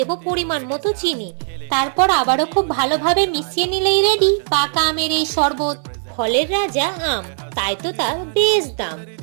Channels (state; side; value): silent; left; digital silence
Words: পরিমাণ মতো চিনি। তারপর আবারও খুব ভালোভাবে মিশিয়ে নিলেই রেডি পাকা আমের এই শরবত। ফলের রাজা আম, তাই তো তার বেশ দাম।